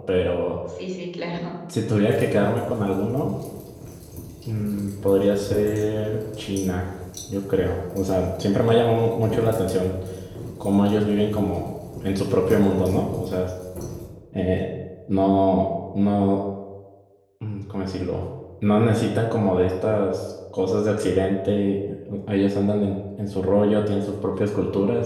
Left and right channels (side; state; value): both; identical; correlation 1.00